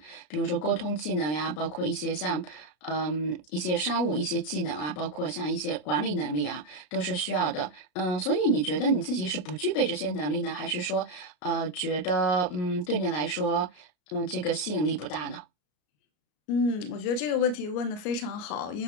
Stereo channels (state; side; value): late; right; 33 ms